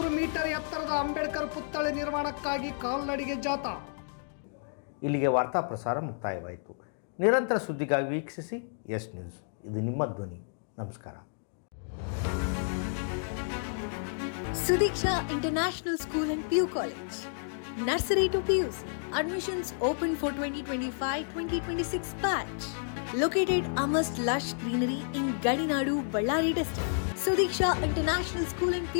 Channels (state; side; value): silent; right; digital silence